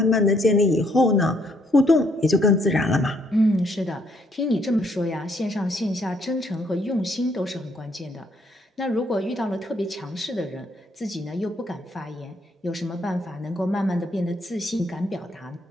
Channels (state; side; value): normal; both; correlation 0.69